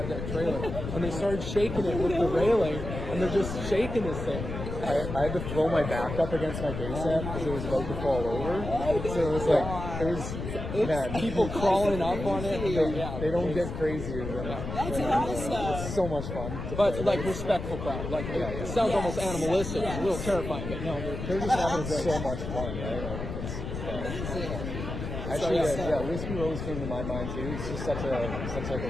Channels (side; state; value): left; noise; rumble, 6 dB below the sound